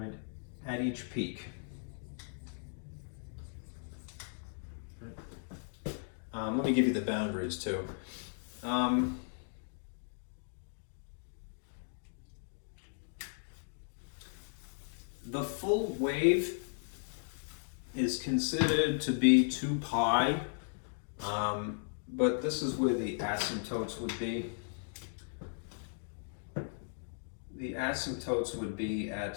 at each peak. Right. Let me give you the boundaries too. The full wave is considered to be 2 pi, but this is where the asymptotes would be. The asymptotes would be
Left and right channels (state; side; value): silent; right; digital silence